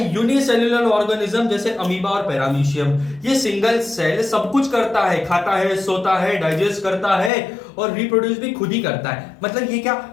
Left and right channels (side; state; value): right; drops out; at 7.3 s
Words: यूनिसेल्युलर ऑर्गेनिज्म, जैसे अमीबा और पैरामीशियम। ये सिंगल सेल सब कुछ करता है, खाता है, सोता है, डाइजेस्ट करता है और रिप्रोड्यूस भी खुद ही करता है। मतलब ये क्या